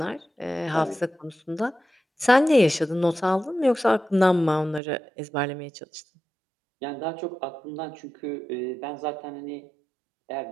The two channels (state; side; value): drops out; left; at 4.8 s